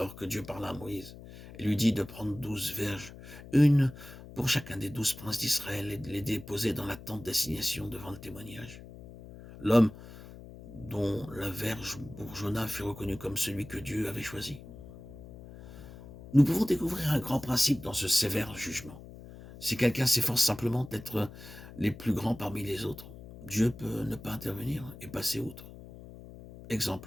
que Dieu parla à Moïse et lui dit de prendre 12 verges, une pour chacun des 12 princes d'Israël, et de les déposer dans la tente d'assignation devant le témoignage. L'homme dont la verge bourgeonna fut reconnu comme celui que Dieu avait choisi. Nous pouvons découvrir un grand principe dans ce sévère jugement. Si quelqu'un s'efforce simplement d'être les plus grands parmi les autres, Dieu peut ne pas intervenir et passer outre.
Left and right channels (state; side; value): noise; left; hum, 16 dB below the sound